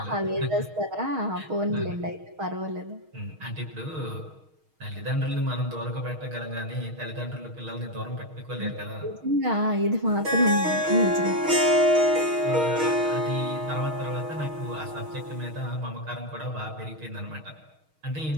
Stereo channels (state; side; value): late; left; 6.4 ms